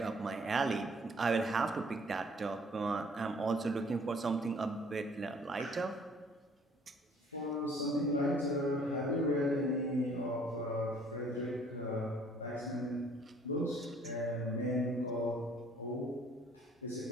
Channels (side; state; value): both; normal; correlation 0.58